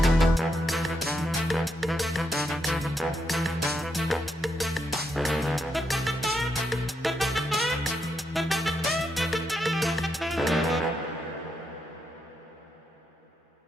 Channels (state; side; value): normal; both; correlation 0.80